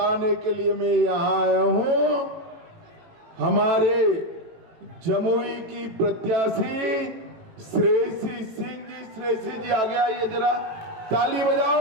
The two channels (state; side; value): late; left; 18 ms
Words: के लिए मैं यहाँ आया हूँ। हमारे जमुई की प्रत्याशी श्रेयसी सिंह जी, श्रेयसी जी आगे आइए जरा, ताली